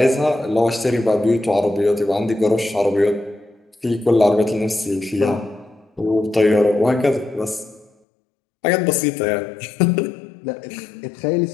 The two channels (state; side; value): drops out; right; at 7.9 s